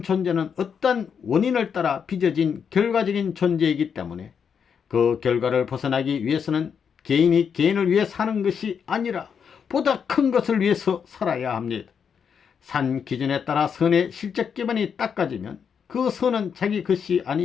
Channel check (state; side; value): quieter; right; 7.0 dB